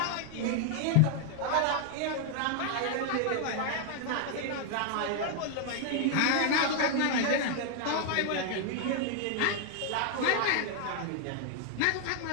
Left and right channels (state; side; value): different; both; correlation 0.00